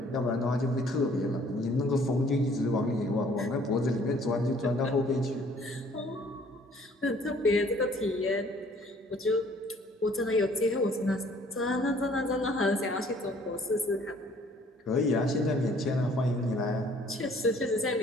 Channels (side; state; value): both; normal; correlation 0.57